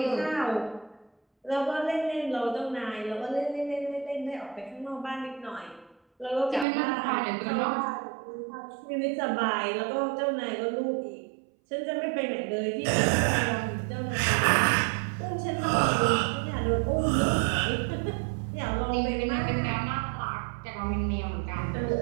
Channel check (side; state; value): left; drops out; at 6.7 s